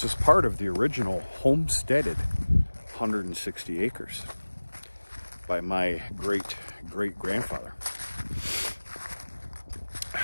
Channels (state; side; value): inverted; both; correlation -1.00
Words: is part of the original homesteaded 160 acres by my great-great-grandfather.